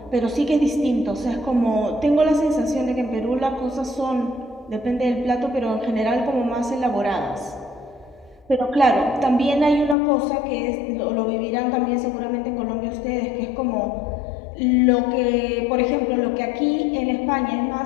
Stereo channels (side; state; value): right; drops out; at 10.0 s